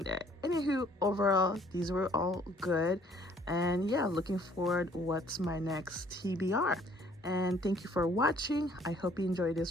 there. Anywho, overall these were all good, and yeah, looking forward what's my next TBR. And thank you for watching. I hope you enjoyed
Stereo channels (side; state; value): both; normal; correlation 0.60